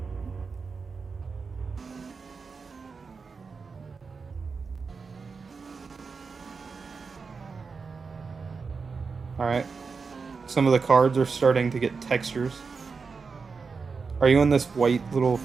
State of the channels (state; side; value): quieter; left; 4.9 dB